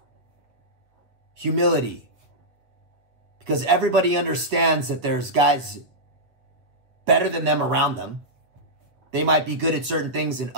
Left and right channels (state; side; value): late; left; 8.1 ms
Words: humility. Because everybody understands that there's guys better than them around them. They might be good at certain things and